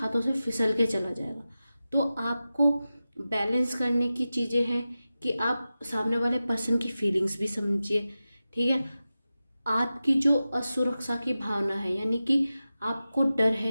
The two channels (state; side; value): inverted; both; correlation -0.94